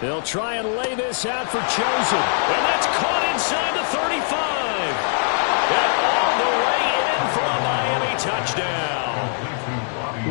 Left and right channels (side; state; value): right; silent; digital silence